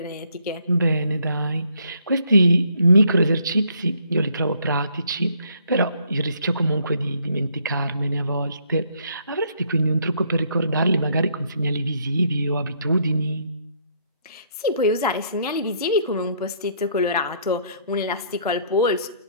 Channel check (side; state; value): both; inverted; correlation -0.67